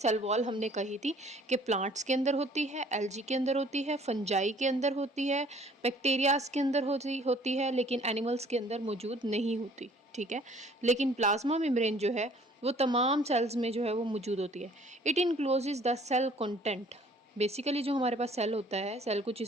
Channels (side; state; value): both; normal; correlation 0.55